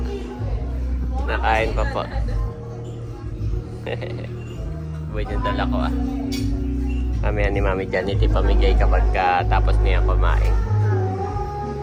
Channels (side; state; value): both; identical; correlation 1.00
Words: Nakain pa po. Buhay yung dala ko Mamaya ni Mami Janet ipamigay kapag tapos niya kumain.